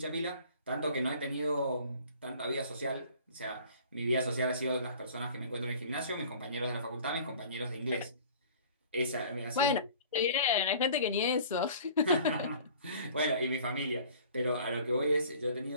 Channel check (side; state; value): both; inverted; correlation -0.48